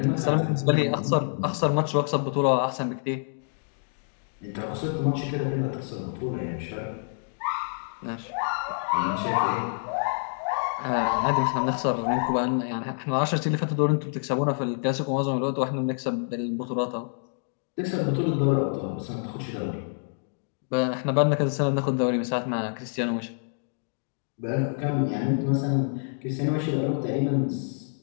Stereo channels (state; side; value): silent; right; digital silence